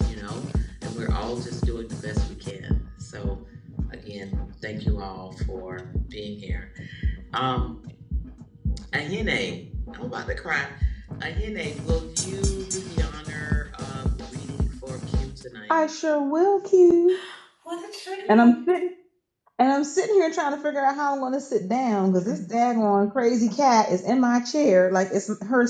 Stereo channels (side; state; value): both; identical; correlation 1.00